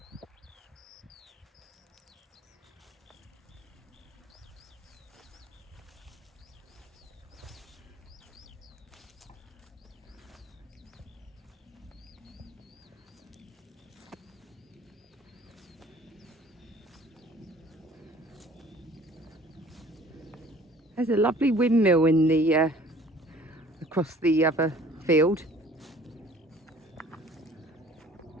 There's a lovely windmill in the across the other field.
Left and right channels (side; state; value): both; normal; correlation 0.52